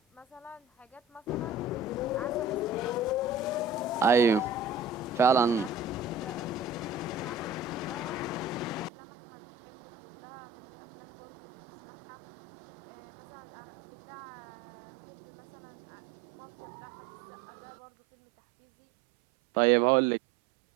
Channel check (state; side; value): drops out; left; at 8.9 s